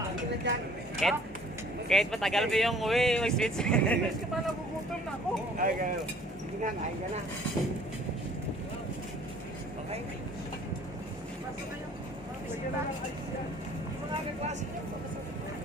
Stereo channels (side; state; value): both; normal; correlation 0.54